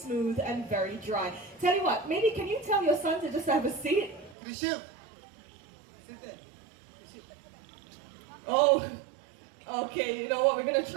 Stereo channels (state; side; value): drops out; left; at 4.4 s